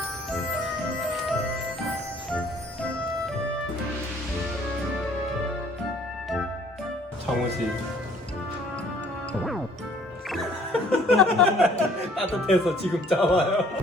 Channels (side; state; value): both; normal; correlation 0.57